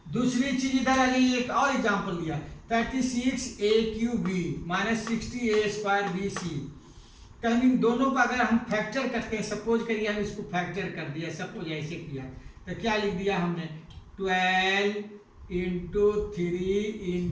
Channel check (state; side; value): identical; both; correlation 1.00